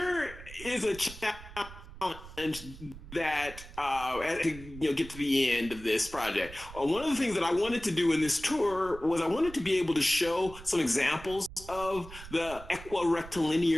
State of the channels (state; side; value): noise; right; rumble, 15 dB below the sound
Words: is a challenge that as we get to the end of this project. One of the things that I wanted to do in this tour was I wanted to be able to show some examples of the